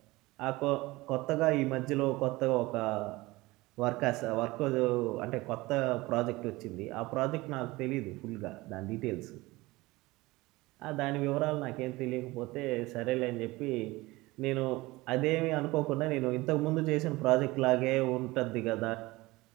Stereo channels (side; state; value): left; quieter; 20.8 dB